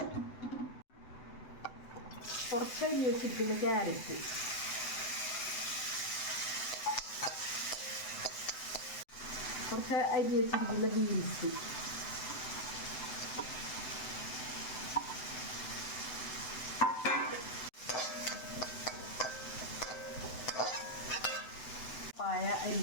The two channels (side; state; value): right; late; 7.9 ms